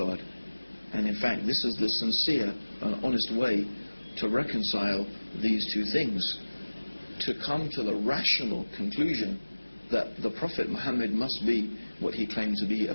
And in fact, this is the sincere and honest way to reconcile these two things, to come to the rational conclusion that the Prophet Muhammad must be what he claimed to be, a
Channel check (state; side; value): inverted; both; correlation -1.00